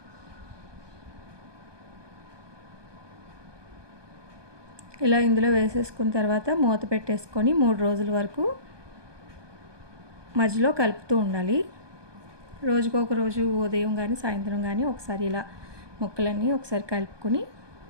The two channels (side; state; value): left; late; 1.2 ms